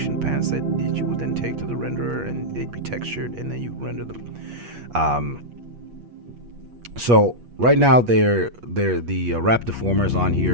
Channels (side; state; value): left; late; 8.4 ms